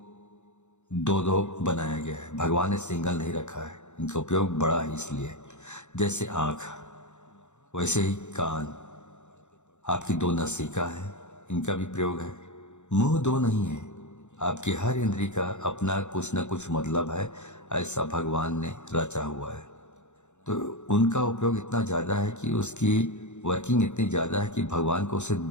2-2 बनाया गया है। भगवान ने सिंगल नहीं रखा है, इनका उपयोग बड़ा है। इसलिए जैसे आँख वैसे ही कान, आपकी 2 नासिका है, इनका भी प्रयोग है। मुंह 2 नहीं है। आपकी हर इंद्री का अपना कुछ न कुछ मतलब है, ऐसा भगवान ने रचा हुआ है। तो उनका उपयोग इतना ज़्यादा है कि उसकी वर्किंग इतनी ज़्यादा है कि भगवान को उसे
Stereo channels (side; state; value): right; late; 0.84 ms